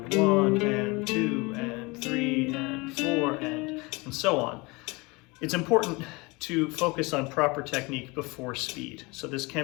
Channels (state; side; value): quieter; right; 25.7 dB